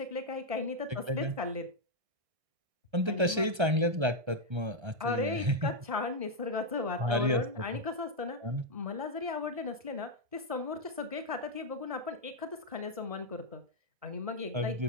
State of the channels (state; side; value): late; left; 1.3 ms